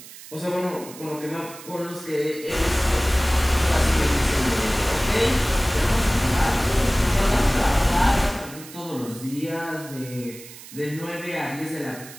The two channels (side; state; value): right; noise; hiss, 17 dB below the sound